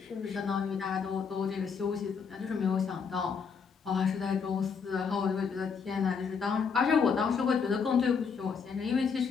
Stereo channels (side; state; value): right; quieter; 5.9 dB